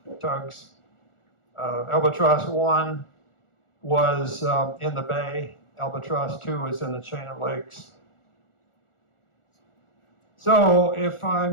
tugs. Albatross 1 was in the bay. Albatross 2 was in the chain of lakes. So if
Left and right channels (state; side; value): late; right; 1.4 ms